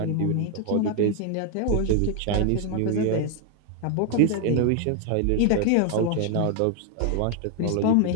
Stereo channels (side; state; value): both; different; correlation 0.00